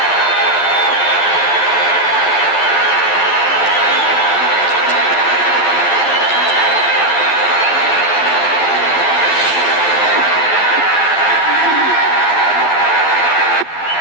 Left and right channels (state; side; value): late; right; 11 ms